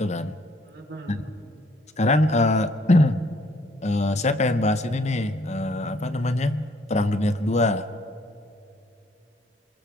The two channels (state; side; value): normal; both; correlation 0.64